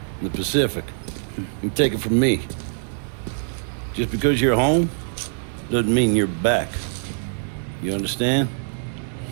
in the Pacific. You take it from me. Just because you're home doesn't mean you're back. You understand?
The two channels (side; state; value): left; silent; digital silence